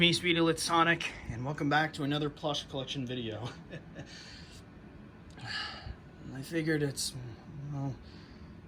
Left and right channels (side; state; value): both; identical; correlation 1.00